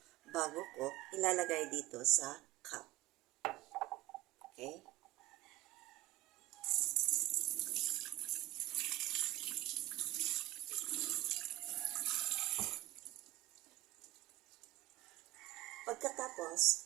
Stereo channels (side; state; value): left; quieter; 17.1 dB